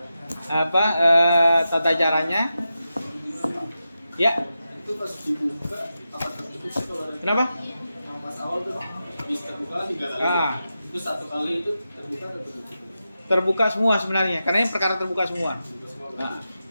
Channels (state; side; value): inverted; both; correlation -0.90